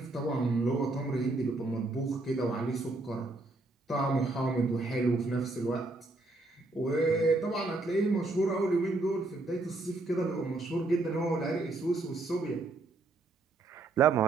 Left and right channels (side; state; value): left; quieter; 3.0 dB